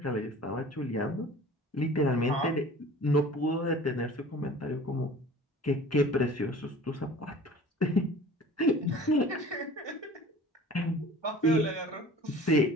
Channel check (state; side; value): normal; both; correlation 0.44